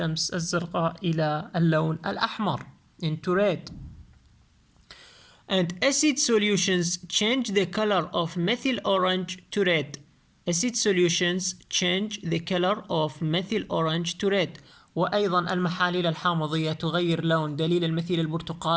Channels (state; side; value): identical; both; correlation 1.00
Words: الزرقاء إلى اللون الأحمر into red. And acid solutions change the color of methyl orange to red. Acid solutions change the color of methyl orange to red. وأيضا المحاليل الحامضية تغير لون دليل المثيل